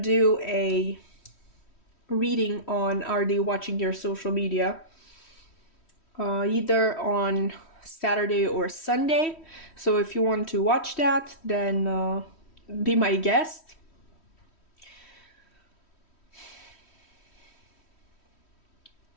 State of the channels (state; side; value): late; right; 3.1 ms